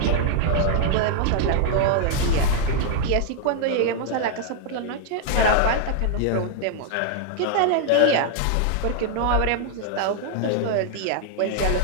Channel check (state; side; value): different; both; correlation 0.00